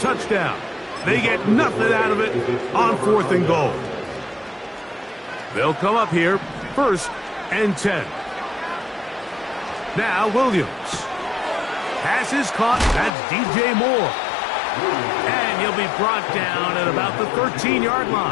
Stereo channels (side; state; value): right; drops out; at 13.1 s